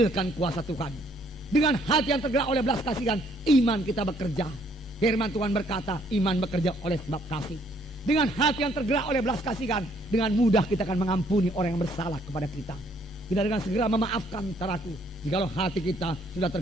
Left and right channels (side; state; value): both; normal; correlation 0.65